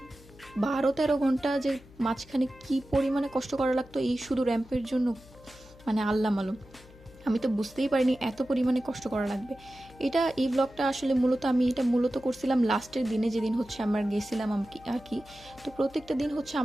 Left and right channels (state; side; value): noise; left; hum, 23 dB below the sound